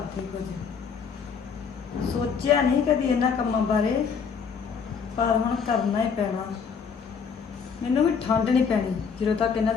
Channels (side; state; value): right; quieter; 6.2 dB